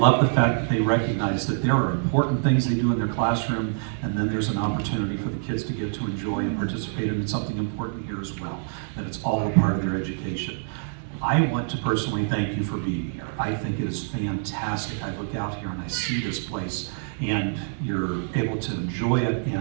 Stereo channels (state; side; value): silent; left; digital silence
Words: the fact that they recognize that there are important things they do in their classroom, and then there's an opportunity for the kids to get to enjoy and participate in something important here as well, that it's all a part of their education. I want to personally thank you for being here. I think it is fantastic. I look out here and I see this place, and you're able to enjoy it